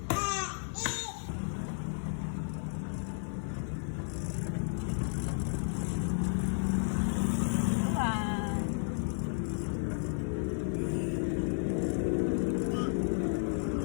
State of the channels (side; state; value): right; silent; 56 dB below the other